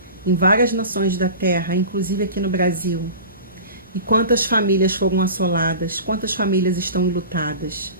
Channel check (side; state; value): both; inverted; correlation -0.35